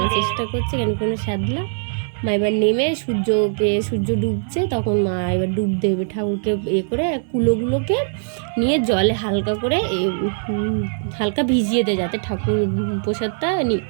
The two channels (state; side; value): silent; left; digital silence